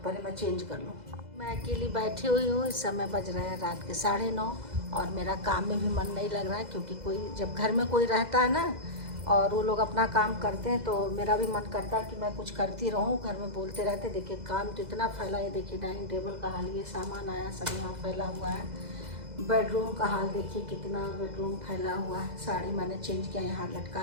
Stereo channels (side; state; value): left; late; 2.0 ms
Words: मैं चेंज कर लूँ। मैं अकेली बैठी हुई हूँ, इस समय बज रहे हैं रात के 9:30, और मेरा काम में भी मन नहीं लग रहा है, क्योंकि कोई जब घर में कोई रहता है ना और वो लोग अपना काम करते हैं, तो मेरा भी मन करता है कि मैं कुछ करती रहूँ। घर में बोलते रहते, देखिए काम तो इतना फैला है। देखिए डाइनिंग टेबल का हाल, ये सामान आया सब यहाँ फैला हुआ है। बेडरूम का हाल देखिए कितना बेडरूम फैला हुआ है। साड़ी मैंने चेंज किया, यहाँ